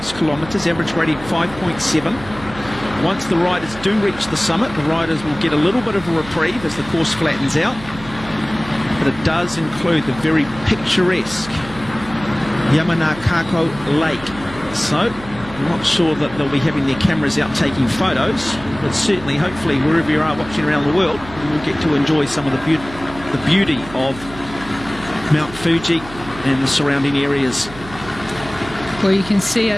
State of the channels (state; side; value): noise; right; hum, 16 dB below the sound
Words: kilometres, average gradient 5.7. Once the riders do reach the summit, the riders will get a little bit of a reprieve as the course flattens out. But it does include the very picturesque Yamanakako Lake. So I'm not sure that they'll be having their cameras out taking photos, but certainly, hopefully, wherever you are watching around the world, you will get to enjoy some of the beauty of Mount Fuji and the surrounding areas. Well, you can see